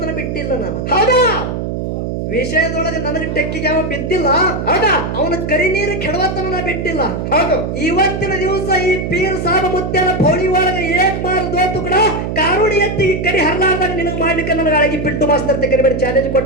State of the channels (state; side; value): noise; right; hum, 3 dB below the sound